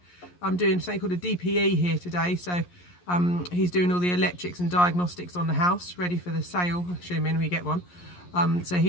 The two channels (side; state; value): right; late; 11 ms